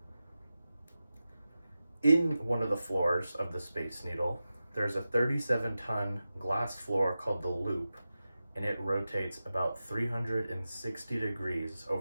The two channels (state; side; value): inverted; both; correlation -0.94